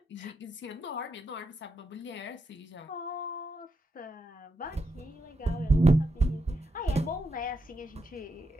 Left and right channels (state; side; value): normal; both; correlation 0.83